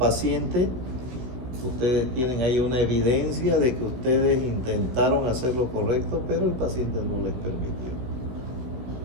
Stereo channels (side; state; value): left; late; 16 ms